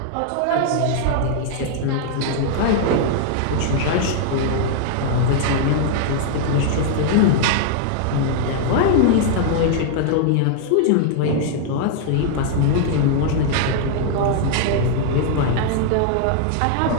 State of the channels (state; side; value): different; both; correlation 0.00